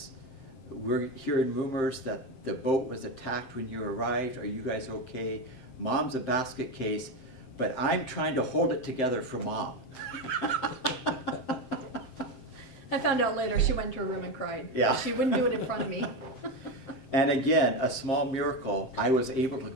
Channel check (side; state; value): right; late; 7.8 ms